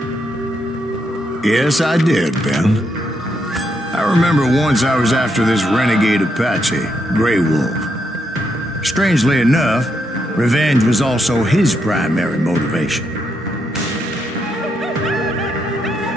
Yes, I did, Ben. I remember once I was after this renegade Apache, Grey Wolf. Strangely enough, revenge was also his primary motivation.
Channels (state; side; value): normal; both; correlation 0.79